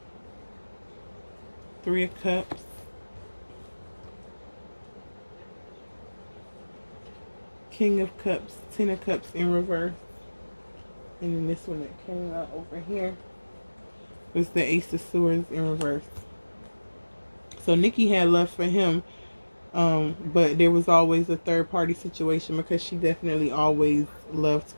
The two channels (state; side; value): inverted; both; correlation -1.00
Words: 3 of Cups. King of Cups. 10 of Cups in reverse. And then this one that came out over here was the Ace of Swords in reverse. So Nicki had love for him. But there was always a third party situation because she definitely always loved